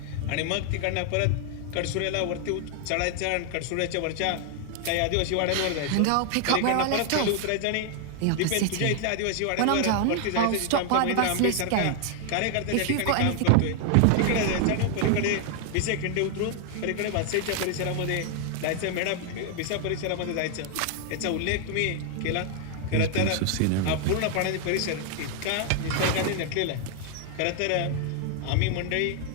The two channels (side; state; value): both; different; correlation 0.00